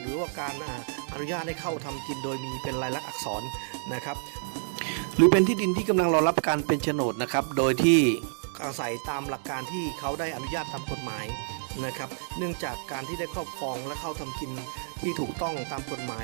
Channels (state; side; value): silent; left; digital silence